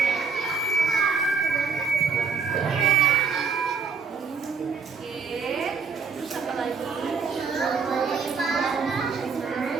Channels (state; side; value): quieter; left; 5.4 dB